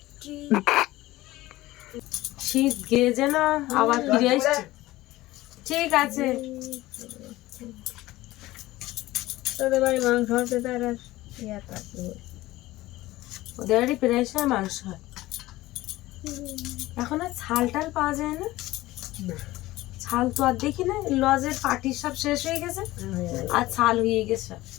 শীত গিয়ে যেন আবার ফিরে আসছে। ঠিক আছে, তোদের বাড়ি মাংস হচ্ছে, তার ওদের বাড়ি প্রায় সময় মাংস হয়। এখন আর ছাল টাল পাওয়া যায় না, ছাল তো আর দেখি না, লজের পার্টি সব শেষ হয়ে গেছে, আর ছাল হয়ে গেছে।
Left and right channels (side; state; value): right; quieter; 17.6 dB